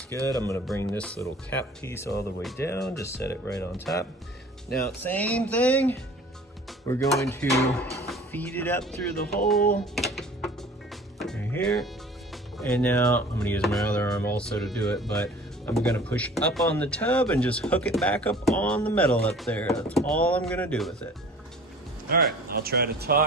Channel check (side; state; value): both; normal; correlation 0.46